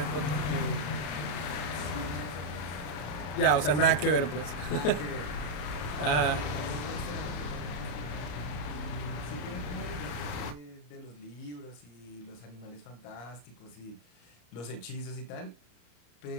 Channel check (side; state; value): right; late; 34 ms